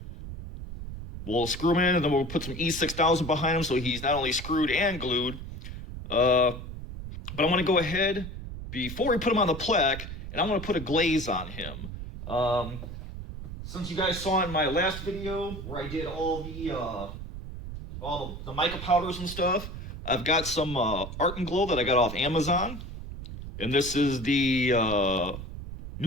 We'll screw him in, and then we'll put some E6000 behind him so he's not only screwed and glued. But I'm going to go ahead, before we put him on the plaque, and I'm going to put a glaze on him. Since you guys saw in my last video where I did all the mica powders and stuff, I've got some Art and Glow that I got off Amazon. And this is the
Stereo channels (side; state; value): right; noise; rumble, 9 dB below the sound